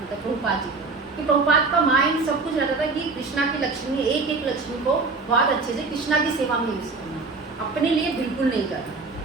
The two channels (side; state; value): left; quieter; 4.0 dB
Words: मतलब प्रभुपाद जी को, कि प्रभुपाद का माइंड सब कुछ रहता था कि कृष्णा की लक्ष्मी, एक एक लक्ष्मी को बहुत अच्छे से कृष्णा की सेवा में यूज़ करना, अपने लिए बिल्कुल नहीं करना।